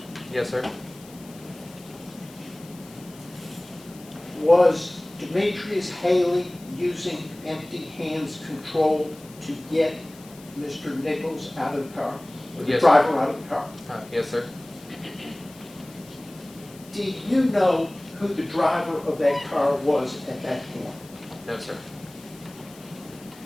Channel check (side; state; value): left; noise; hiss, 22 dB below the sound